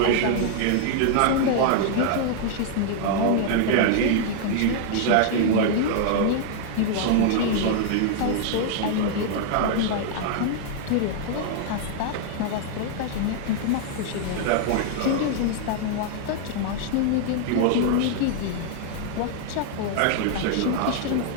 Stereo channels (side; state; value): both; different; correlation -0.01